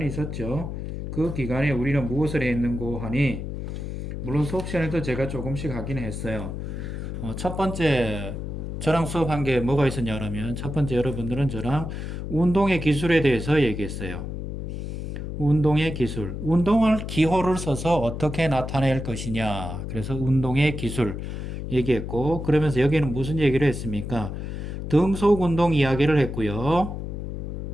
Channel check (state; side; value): noise; left; hum, 6 dB below the sound